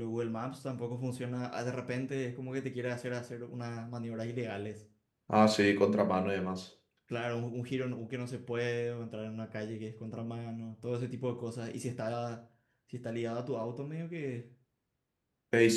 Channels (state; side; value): identical; both; correlation 1.00